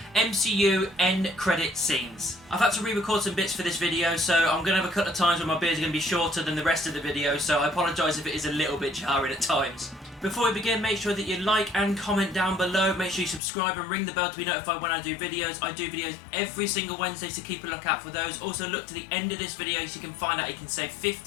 MCU End Credit Scenes. I've had to re-record some bits for this video, so I'm going to have a couple of times where my beard's going to be shorter than the rest of the video, so I apologise if it is a little bit jarring at times. Before we begin, make sure that you like and comment down below. Make sure you subscribe and ring the bell to be notified when I do videos. I do videos every single Wednesday, so keep a lookout for those. Also, look to the end of this video so you can find out you can save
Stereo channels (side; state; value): right; drops out; at 13.4 s